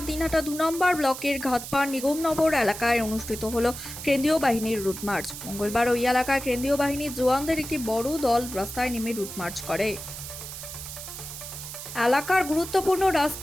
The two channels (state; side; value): noise; right; hiss, 10 dB below the sound